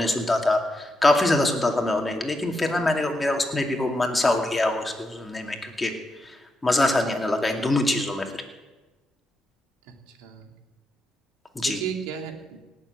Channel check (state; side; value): normal; both; correlation 0.84